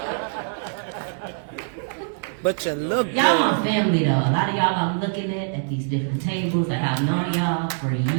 But you look good. Y'all my family though. A lot of y'all I'm looking at these different tables. Like I've known y'all for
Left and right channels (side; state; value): left; silent; digital silence